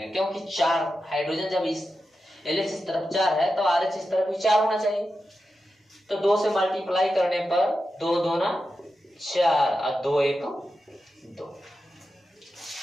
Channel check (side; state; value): both; normal; correlation 0.90